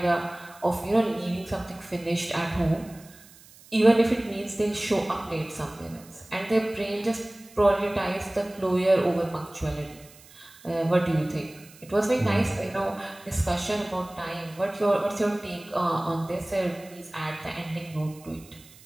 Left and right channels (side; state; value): right; noise; hiss, 23 dB below the sound